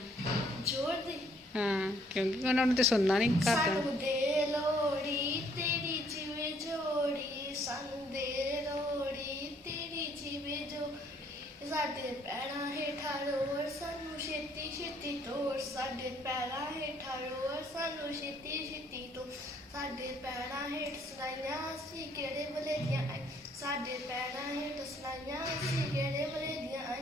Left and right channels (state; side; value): normal; both; correlation 0.65